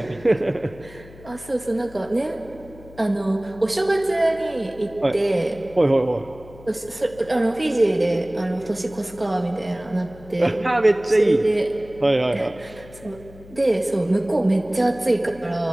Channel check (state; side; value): noise; left; hum, 20 dB below the sound